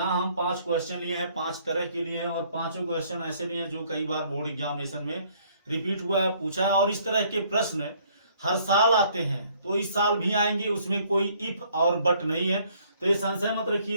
हम 5 क्वेश्चन लिए हैं, 5 तरह के लिए हैं और पांचों क्वेश्चन ऐसे लिए हैं जो कई बार बोर्ड एग्जामिनेशन में रिपीट हुआ है, पूछा है। और इस तरह के प्रश्न हर साल आते हैं, तो इस साल भी आएंगे, उसमें कोई इफ और बट नहीं है। तो ये संशय मत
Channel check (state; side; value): inverted; both; correlation -0.63